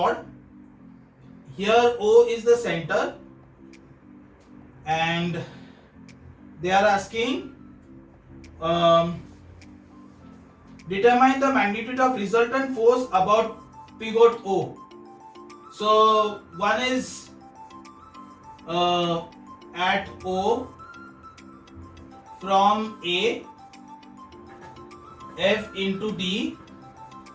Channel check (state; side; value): identical; both; correlation 1.00